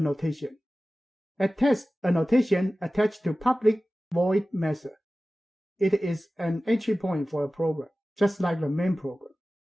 addTest annotation attached to public void method. It is an entry point for a program, just like the main program.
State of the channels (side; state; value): both; normal; correlation 0.96